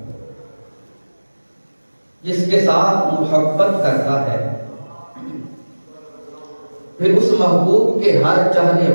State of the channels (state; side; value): inverted; both; correlation -1.00